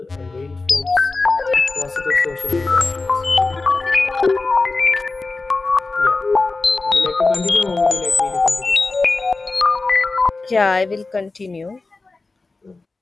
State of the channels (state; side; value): quieter; right; 3.6 dB